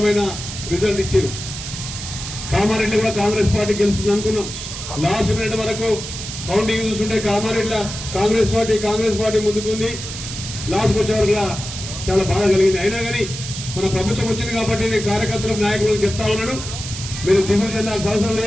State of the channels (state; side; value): noise; right; hiss, 8 dB below the sound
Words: రిజల్ట్ ఇచ్చారు. కామారెడ్డి కూడా కాంగ్రెస్ పార్టీ గెలుస్తుంది అనుకున్నాం. లాస్ట్ మినిట్ వరకు కౌంటింగ్ చూస్తుంటే కామారెడ్డిలో కాంగ్రెస్ పార్టీ ముందుకుంది. లాస్ట్కి వచ్చే వరకు చాలా బాధ కలిగింది. అయినా కానీ మన ప్రభుత్వం వచ్చింది కాబట్టి నేను కార్యకర్తలకు నాయకులకు చెప్తా ఉన్నాను, మీరు దిగులు చెందాల్సిన అవసరం